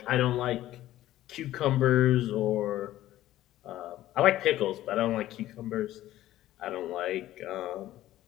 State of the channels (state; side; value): quieter; right; 14.3 dB